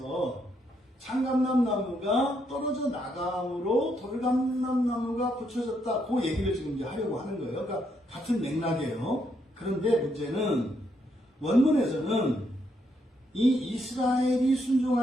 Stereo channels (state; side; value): normal; both; correlation 0.76